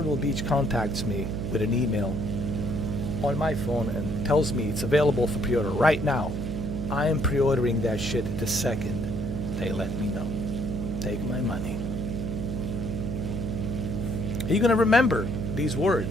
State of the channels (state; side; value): noise; right; hum, 4 dB below the sound